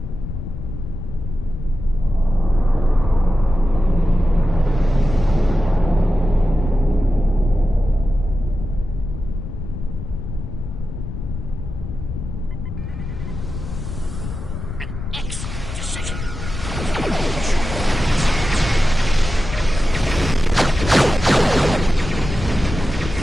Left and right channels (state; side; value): noise; left; rumble, 7 dB below the sound